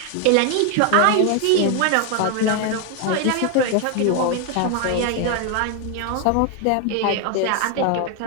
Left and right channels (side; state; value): both; different; correlation 0.01